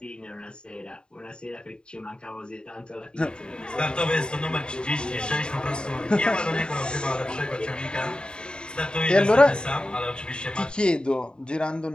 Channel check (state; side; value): late; right; 0.050 ms